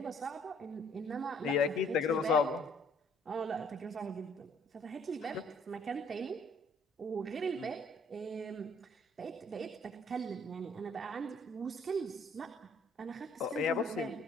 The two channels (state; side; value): normal; both; correlation 0.60